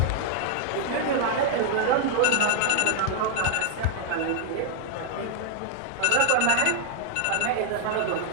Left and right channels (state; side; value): different; both; correlation 0.00